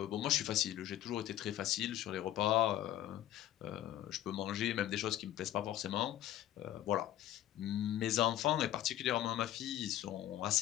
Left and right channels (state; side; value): quieter; right; 12.8 dB